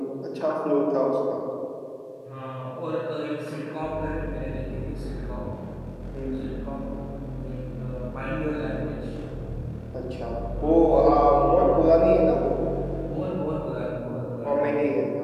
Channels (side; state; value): both; identical; correlation 1.00